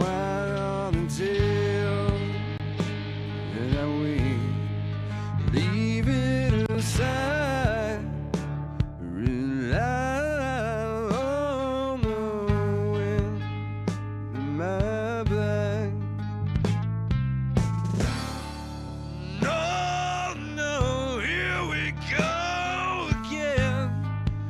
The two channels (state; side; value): identical; both; correlation 1.00